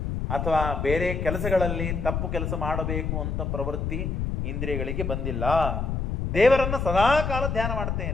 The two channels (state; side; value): noise; left; rumble, 2 dB below the sound